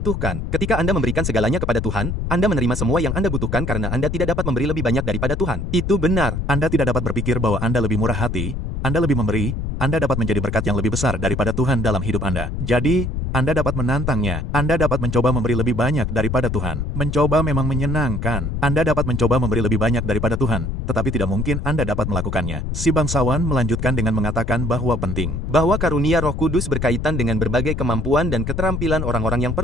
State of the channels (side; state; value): left; noise; rumble, 3 dB below the sound